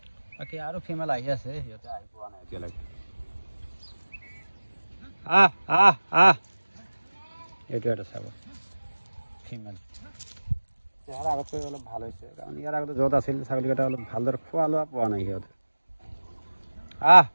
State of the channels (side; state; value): both; inverted; correlation -1.00